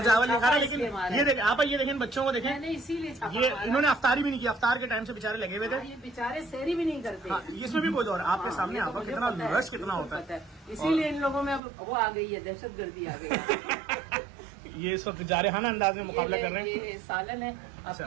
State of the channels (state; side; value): drops out; left; at 11.6 s